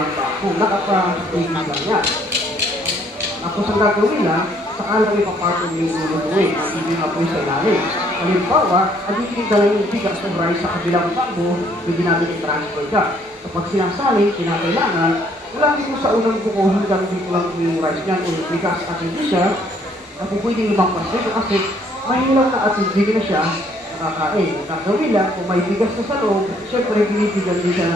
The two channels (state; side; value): normal; both; correlation 0.64